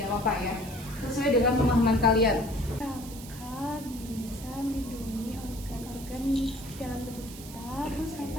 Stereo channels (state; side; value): noise; right; hiss, 15 dB below the sound